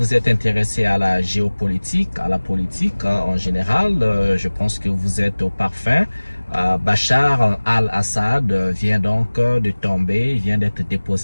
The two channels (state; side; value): inverted; both; correlation -1.00